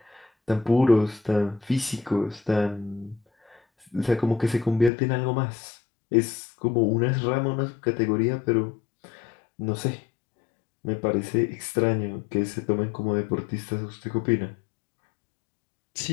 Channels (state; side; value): drops out; right; at 4.9 s